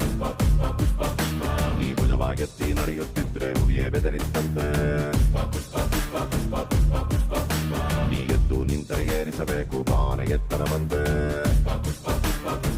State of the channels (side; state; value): both; identical; correlation 1.00